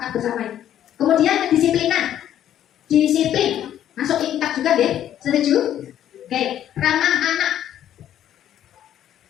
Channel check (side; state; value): right; quieter; 11.1 dB